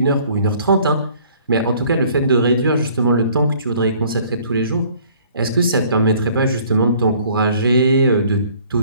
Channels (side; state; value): both; inverted; correlation -0.57